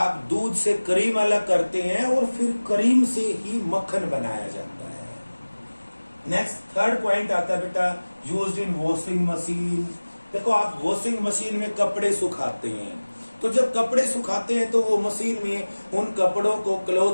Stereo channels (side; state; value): both; inverted; correlation -1.00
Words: दूध से क्रीम अलग करते हैं और फिर क्रीम से ही मक्खन बनाया जाता है। नेक्स्ट थर्ड पॉइंट आता है बेटा यूज्ड इन वॉशिंग मशीन। देखो आप वॉशिंग मशीन में कपड़े सुखाते हैं, तो जब कपड़े सुखाते हैं तो वो मशीन में उन कपड़ों को,